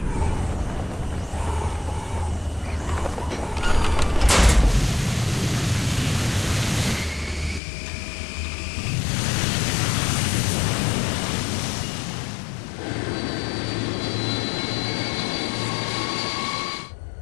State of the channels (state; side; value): drops out; right; at 7.6 s